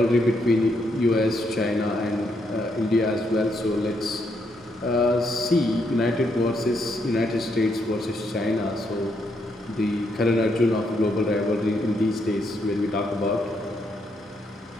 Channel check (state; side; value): normal; both; correlation 0.77